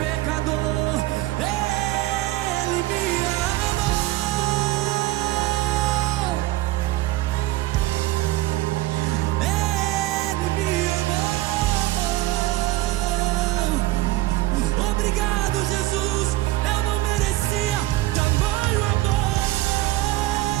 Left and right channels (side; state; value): left; quieter; 17.4 dB